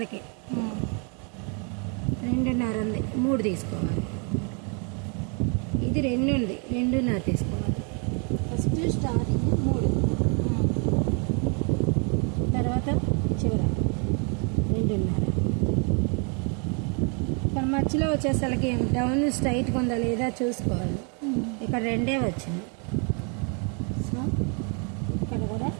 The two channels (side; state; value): left; quieter; 37.3 dB